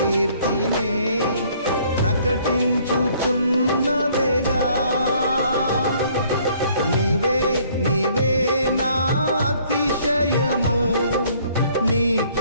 ప్రకటించుచున్నవేగా. నీవే నీవే నా అతిశయము,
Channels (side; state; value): both; inverted; correlation -0.61